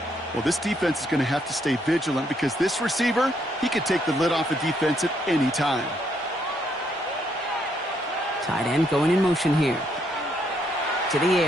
Well, this defense is going to have to stay vigilant because this receiver, he could take the lid off a defense at any time. Tight end going in motion here. To the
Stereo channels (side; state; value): both; normal; correlation 0.73